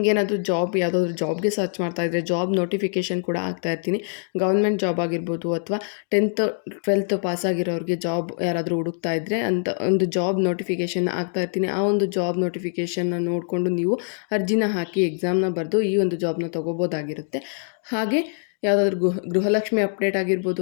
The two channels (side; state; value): right; silent; 63 dB below the other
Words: ಯಾವುದಾದ್ರೂ ಜಾಬ್ಗೆ ಸರ್ಚ್ ಮಾಡ್ತಾ ಇದ್ದರೆ ಜಾಬ್ ನೋಟಿಫಿಕೇಷನ್ ಕೂಡ ಆಗ್ತಾ ಇರ್ತೀನಿ. ಗೌರ್ಮೆಂಟ್ ಜಾಬ್ ಆಗಿರ್ಬೋದು, ಅಥವಾ 10th 12th ಪಾಸಾಗಿರೋರಿಗೆ ಜಾಬ್ ಯಾರಾದರೂ ಹುಡುಕ್ತಾ ಇದ್ದರೆ ಅಂತ ಒಂದು ಜಾಬ್ ನೋಟಿಫಿಕೇಷನ್ ಆಗ್ತಾ ಇರ್ತೀನಿ. ಆ ಒಂದು ಜಾಬ್ ನೋಟಿಫಿಕೇಷನ್ನ ನೋಡಿಕೊಂಡು ನೀವು ಅರ್ಜಿನ ಹಾಕಿ ಎಕ್ಸಾಮ್ನ ಬರೆದು ಈ ಒಂದು ಜಾಬ್ನ ತೊಗೋಬೋದಾಗಿರುತ್ತೆ. ಹಾಗೆ ಯಾವುದಾದ್ರೂ ಗೃಹಲಕ್ಷ್ಮಿ ಅಪ್ಡೇಟ್ ಆಗಿರ್ಬೋದು,